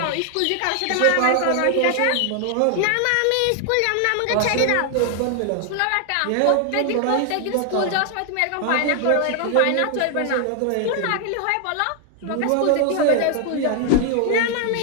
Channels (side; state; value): both; different; correlation 0.00